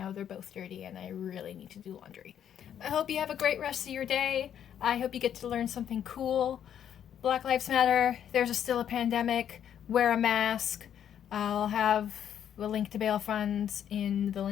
they're both dirty and I really need to do laundry. I hope you have a great rest of your day. I hope you get to learn something cool. Black Lives Matter. There's still a pandemic. Wear a mask. I'll have a link to bail funds in the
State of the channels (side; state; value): right; quieter; 9.5 dB